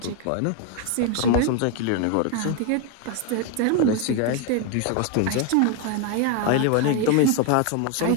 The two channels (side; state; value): both; different; correlation 0.01